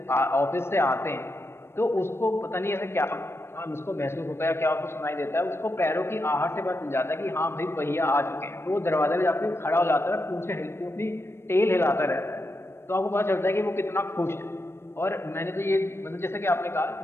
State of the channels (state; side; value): late; right; 0.12 ms